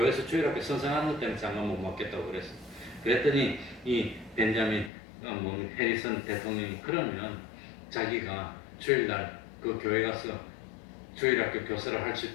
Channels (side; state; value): right; drops out; at 4.9 s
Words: 주일학교 선생하는 것 때문에 장관 못 맡겠다고 그랬어. 그랬더니 이 벤자민 해리슨 대통령이 그러면 자기가 주일날 그 교회 가서 주일학교 교사를 할 수